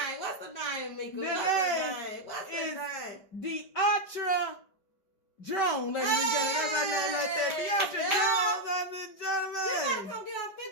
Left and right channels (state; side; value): late; right; 5.2 ms